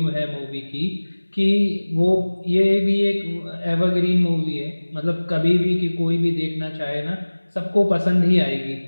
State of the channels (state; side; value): inverted; both; correlation -1.00